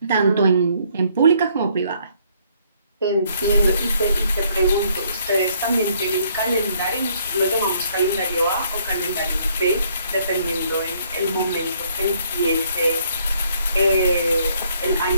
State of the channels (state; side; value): inverted; both; correlation -0.66